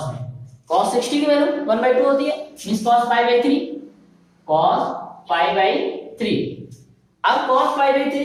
में, cos 60 की वैल्यू 1/2 होती है मींस cos π/3, cos π/3। अब cos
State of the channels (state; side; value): identical; both; correlation 1.00